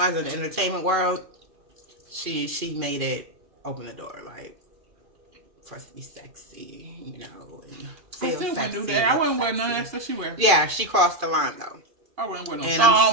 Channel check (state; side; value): late; left; 2.5 ms